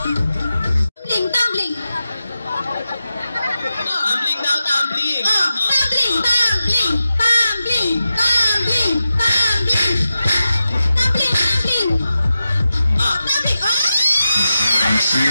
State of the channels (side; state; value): both; inverted; correlation -0.91